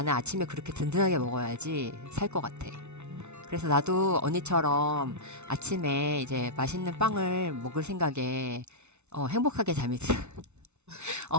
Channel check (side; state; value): left; late; 0.82 ms